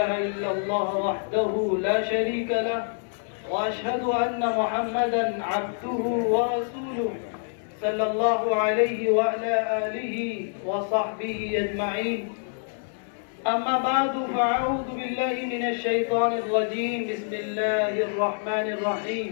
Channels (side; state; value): right; silent; digital silence